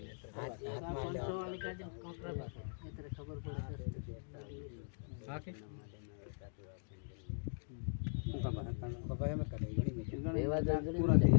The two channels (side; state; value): right; silent; digital silence